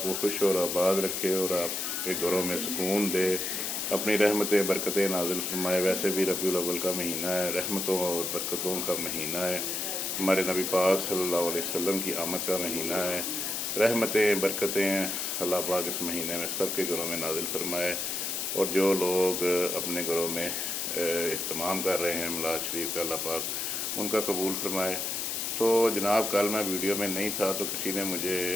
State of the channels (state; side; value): noise; left; hiss, 2 dB below the sound